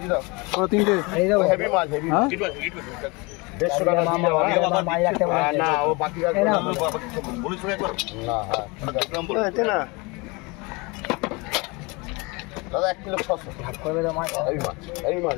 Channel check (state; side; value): quieter; right; 26.9 dB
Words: দি দাও। 3টে এই দাও। হেভি মাছ, হেভি 150 টাকা মাছ রাখতে পারবে না। ও বাকি রাখবে না, বলি শুনে একবার না। হ্যাঁ এতে না দাদা 1 কিলো 600 ভাগ করবে তো মাছ। এই মাছ